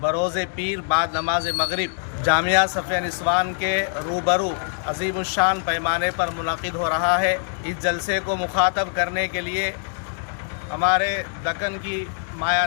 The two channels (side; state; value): right; silent; digital silence